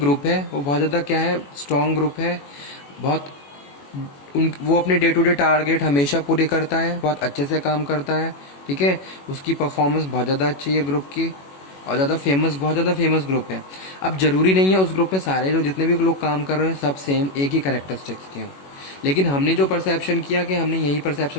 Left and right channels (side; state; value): right; late; 21 ms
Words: ग्रुप है, वो बहुत ज़्यादा क्या है, स्ट्रॉन्ग ग्रुप है, बहुत वो अपने डे टू डे टारगेट हमेशा पूरे करता है, बहुत अच्छे से काम करता है, ठीक है, उसकी परफॉर्मेंस बहुत ज़्यादा अच्छी है ग्रुप की, और बहुत ज़्यादा फेमस ग्रुप है। अब जरूरी नहीं है उस ग्रुप में सारे जो जितने भी लोग काम कर रहे हैं सब सेम एक ही कैरेक्टरिस्टिक्स के हों, लेकिन हमने जो परसेप्शन किया कि हमने यही